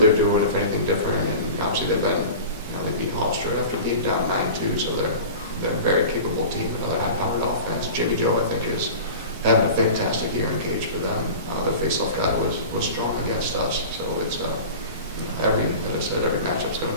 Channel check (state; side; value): inverted; both; correlation -0.36